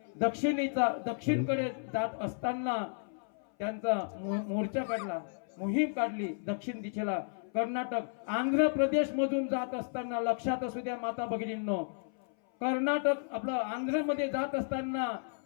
दक्षिणकडे जात असताना त्यांचा मोर्चा काढला, मोहीम काढली दक्षिण दिशेला. कर्नाटक आंध्र प्रदेश मधून जात असताना, लक्षात असू द्या माता भगिनींनो, कर्नाटक आपलं आंध्र मध्ये जात असताना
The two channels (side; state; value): right; silent; 56 dB below the other